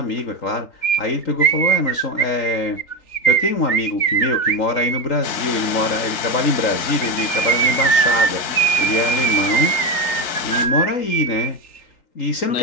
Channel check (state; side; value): late; right; 3.8 ms